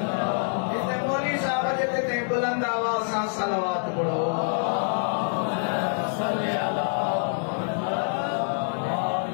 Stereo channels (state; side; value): silent; right; digital silence